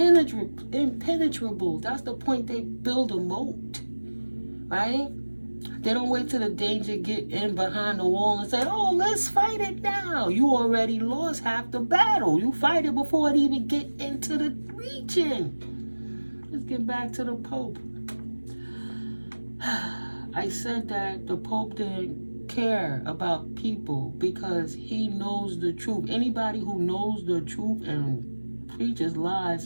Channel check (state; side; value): inverted; both; correlation -1.00